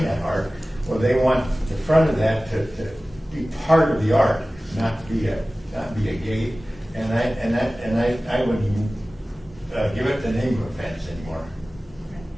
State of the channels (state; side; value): normal; both; correlation 0.97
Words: that art, well, they want the front of that to be part of the art, not be a gate. And I wouldn't give it the name of a fence anymore,